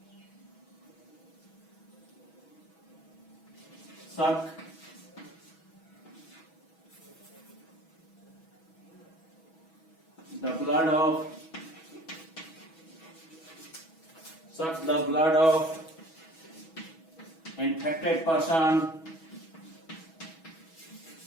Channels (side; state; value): right; late; 6.2 ms